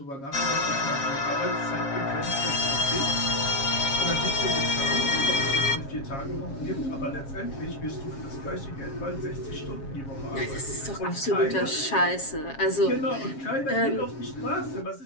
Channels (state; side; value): late; right; 7.3 ms